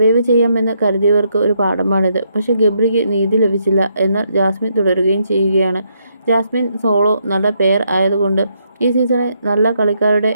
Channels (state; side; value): inverted; both; correlation -0.76